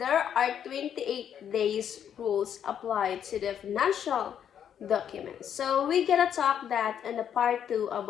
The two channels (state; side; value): quieter; right; 9.0 dB